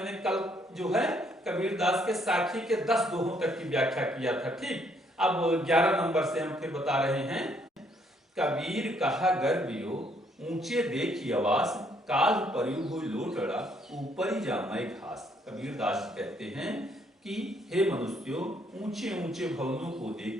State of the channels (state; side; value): normal; both; correlation 0.68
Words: कल जो है कबीरदास के साखी के 10 दोहों तक की व्याख्या किया था। ठीक, अब 11 नंबर से हम फिर बता रहे हैं। कबीर कहा गर्वियो ऊंचे देखी आवास, काल परियु हुई लोटड़ा ऊपर ही जामाए घास। कबीरदास कहते हैं कि हे मनुष्यों, ऊंचे ऊंचे भवनों को